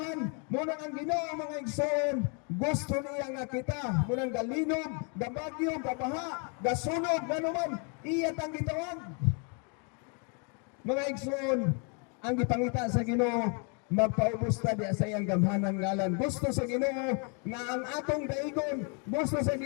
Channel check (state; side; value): quieter; right; 37.5 dB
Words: Muna ang Ginoo mga igsoon gusto niya nga kita munang galinog gabagyo gabaha gasunog ganuman iya tang gitawag. Mga igsoon, ang gipangita sa Ginoo magpaubos ta di sa iyang gamhanan ngalan. Gusto sa Ginoo nga ang atong daigon, gusto sa